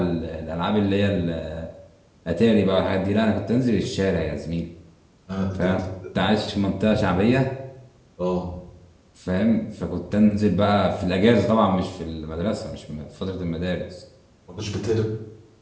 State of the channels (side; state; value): both; identical; correlation 1.00